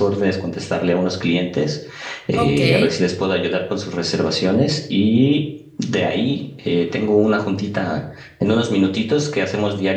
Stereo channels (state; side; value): identical; both; correlation 1.00